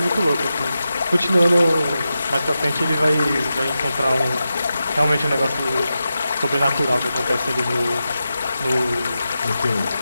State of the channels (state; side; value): inverted; both; correlation -0.91